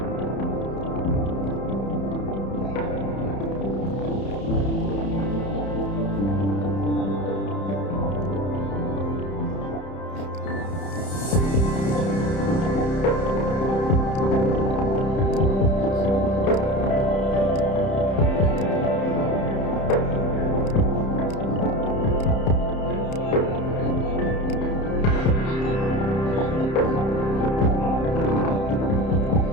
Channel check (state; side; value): late; right; 31 ms